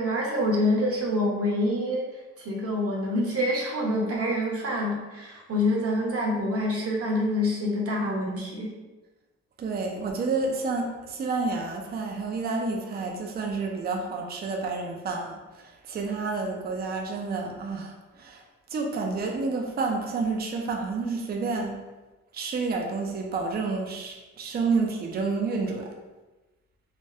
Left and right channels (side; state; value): both; normal; correlation 0.42